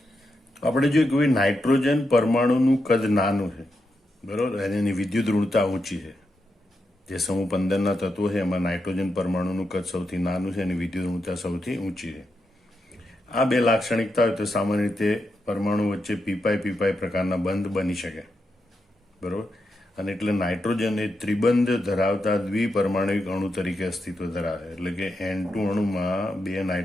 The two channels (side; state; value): both; normal; correlation 0.85